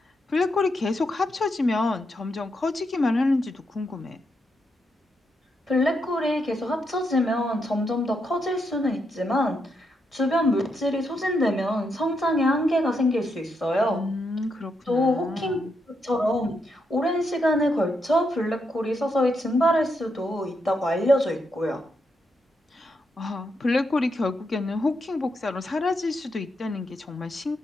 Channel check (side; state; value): both; normal; correlation 0.81